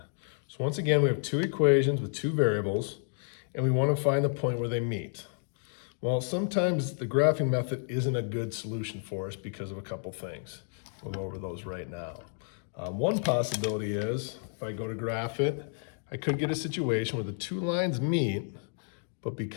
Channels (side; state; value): right; silent; 57 dB below the other